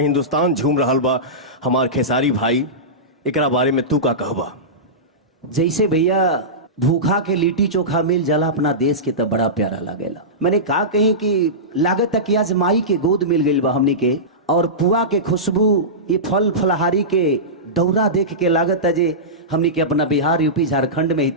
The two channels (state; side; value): normal; both; correlation -0.17